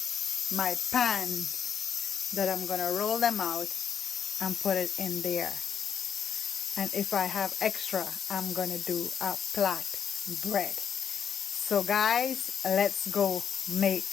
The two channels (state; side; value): quieter; right; 7.8 dB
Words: my pan that I'm gonna roll them out and put it in there. And if I have extra, I'm gonna do a flat bread. So guys, let's go make